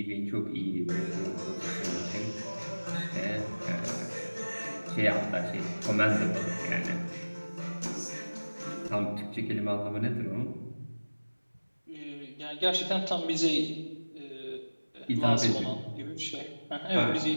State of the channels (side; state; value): both; inverted; correlation -1.00